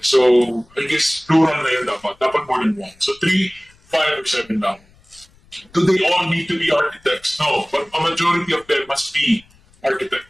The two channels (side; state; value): left; noise; rumble, 30 dB below the sound